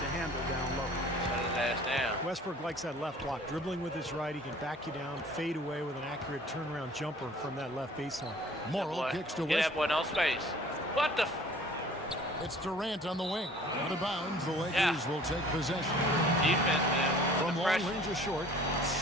handle down low. Shut his ass down. Westbrook likes that left block. Dribbling with his right, he can back you down, fade away with an accurate turnaround jumper from that left baseline. Morrill kicks to Get that boy Westbrook. no space. What the? It's Durant on the wing. Out of bounds, the Lakers will take possession. Defense, man. From long range or short,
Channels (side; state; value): both; normal; correlation 0.50